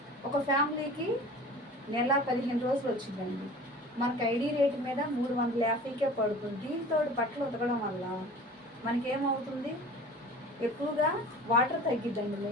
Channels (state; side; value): normal; both; correlation 0.41